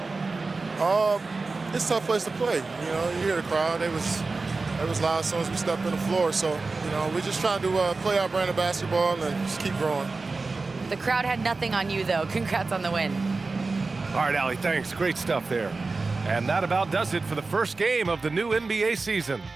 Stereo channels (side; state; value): left; quieter; 3.8 dB